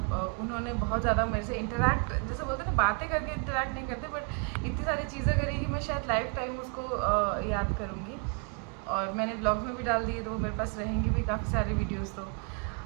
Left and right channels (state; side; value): quieter; left; 34.5 dB